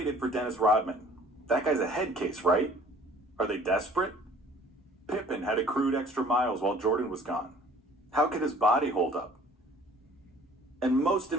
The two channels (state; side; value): normal; both; correlation 0.52